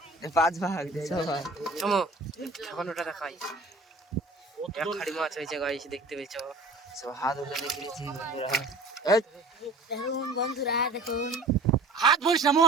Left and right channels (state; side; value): quieter; left; 3.0 dB